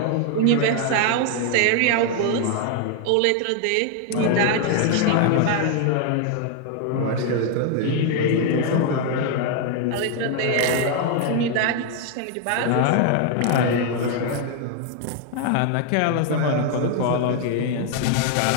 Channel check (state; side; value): different; both; correlation 0.00